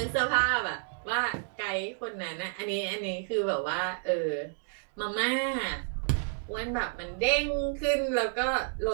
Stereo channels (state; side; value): silent; left; digital silence